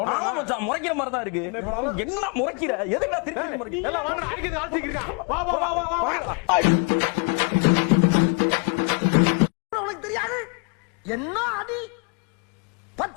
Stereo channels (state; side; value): quieter; right; 34.0 dB